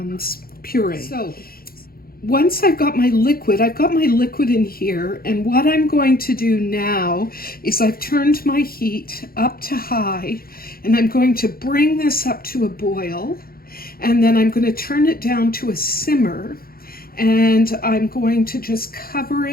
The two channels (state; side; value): late; right; 0.43 ms